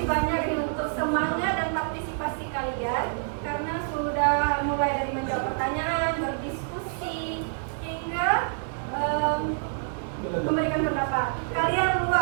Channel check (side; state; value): left; silent; 60 dB below the other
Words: kasih banyak nih untuk semangat dan partisipasi kalian karena sudah mulai dari menjawab pertanyaan, berdiskusi hingga memberikan pendapat. Kalian